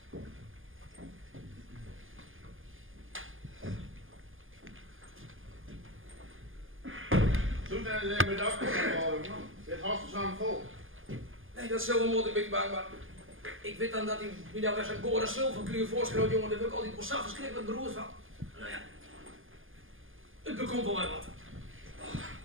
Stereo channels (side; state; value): left; late; 0.59 ms